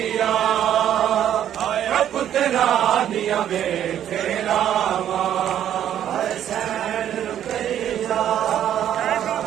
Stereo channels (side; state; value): left; quieter; 10.6 dB